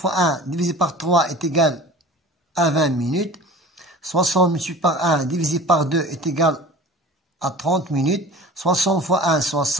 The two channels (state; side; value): normal; both; correlation 0.39